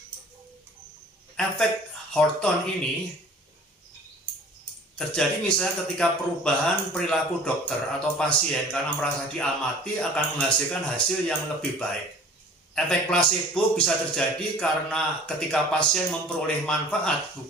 Efek Hawthorne ini terjadi misalnya ketika perubahan perilaku dokter atau pasien karena merasa diamati akan menghasilkan hasil yang lebih baik. Efek placebo bisa terjadi karena ketika pasien memperoleh manfaat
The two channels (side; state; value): both; normal; correlation 0.47